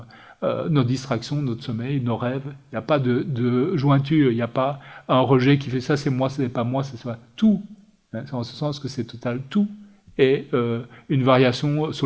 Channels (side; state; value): both; identical; correlation 1.00